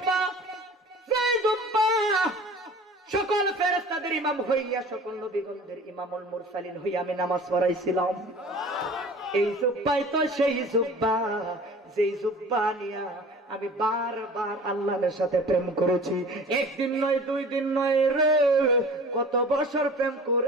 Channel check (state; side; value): normal; both; correlation 0.43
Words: যেই জুব্বা সকল ফেরেশতাদের ইমাম হইয়া সকল নবীগণদের ইমামুল মুরসালিন হইয়া আমি নামাজ পড়াইছিলাম। এই জুব্বাই তো সেই জুব্বা, যেই জুব্বা নিয়া আমি বারবার আল্লাহর সাথে প্রেম করেছি। একদিন নয়, 2 দিন নয় রে, কত বছর প্রেম